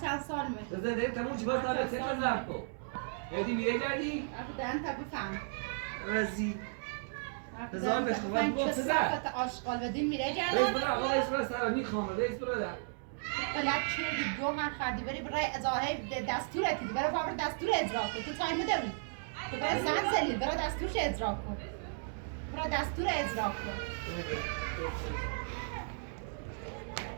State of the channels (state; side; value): silent; left; digital silence